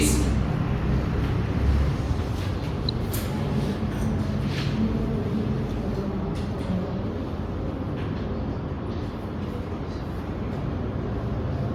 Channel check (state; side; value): identical; both; correlation 1.00